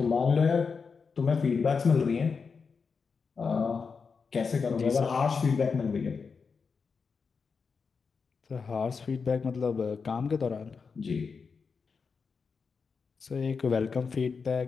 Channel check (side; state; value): right; quieter; 5.3 dB